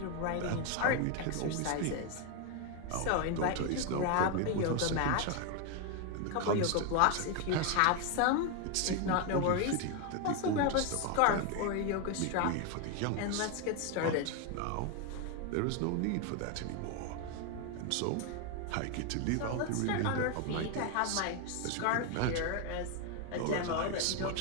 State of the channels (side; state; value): both; different; correlation 0.01